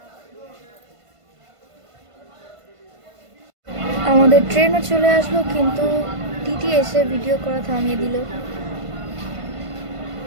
আমাদের ট্রেনও চলে আসলো, কিন্তু টিটি এসে ভিডিও করা থামিয়ে দিল।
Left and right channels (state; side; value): late; left; 1.5 ms